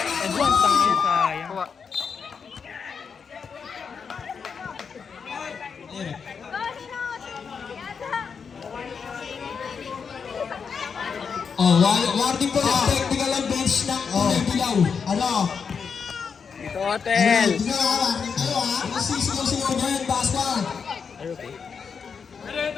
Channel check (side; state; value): right; quieter; 6.1 dB